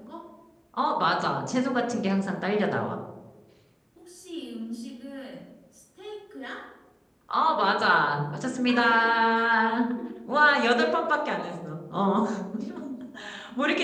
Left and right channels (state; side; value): identical; both; correlation 1.00